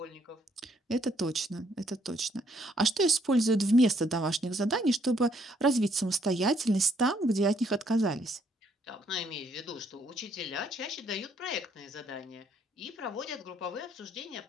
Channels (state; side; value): normal; both; correlation 0.69